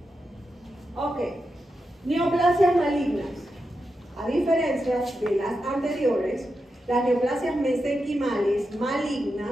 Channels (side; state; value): both; normal; correlation 0.88